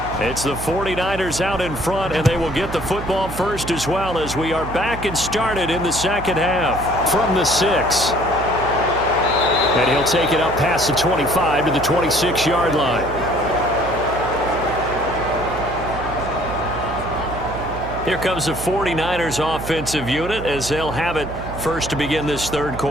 It's the 49ers out in front, and they will get the football first as well as we are back and started in the second half from the 6. And he'll take it up past the 25 to the 26-yard line. Here comes the 49ers offensive unit as they'll have it first to begin this third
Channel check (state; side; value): noise; right; hum, 9 dB below the sound